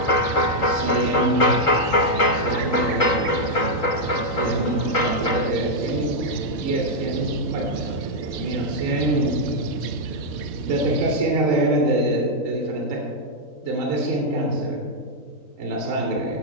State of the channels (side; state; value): right; late; 3.9 ms